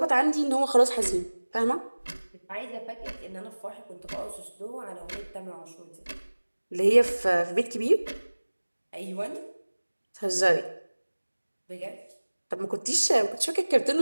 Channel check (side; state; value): both; inverted; correlation -1.00